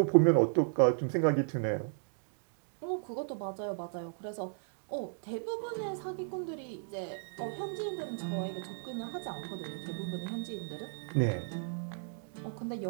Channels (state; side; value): silent; left; digital silence